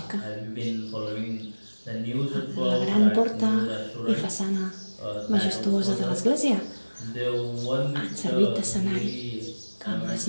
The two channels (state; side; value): inverted; both; correlation -1.00